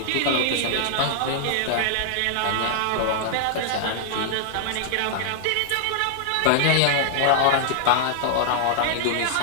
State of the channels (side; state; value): both; different; correlation -0.01